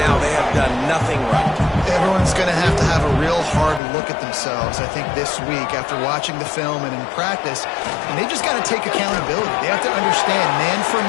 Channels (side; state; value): right; drops out; at 3.8 s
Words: They have done nothing right. Everyone's going to have a real hard look at themselves, I think, this week after watching the film and in practice. And they just got to take accountability. They have to understand, man for